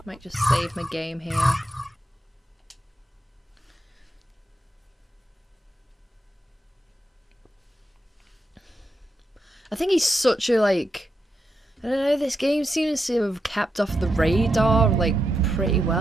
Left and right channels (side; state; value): both; normal; correlation 0.85